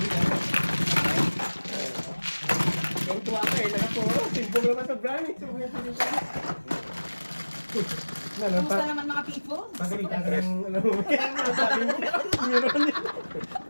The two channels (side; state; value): both; inverted; correlation -1.00